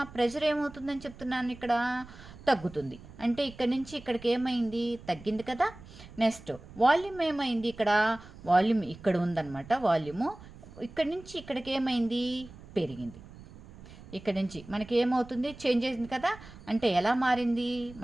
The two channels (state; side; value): noise; right; rumble, 18 dB below the sound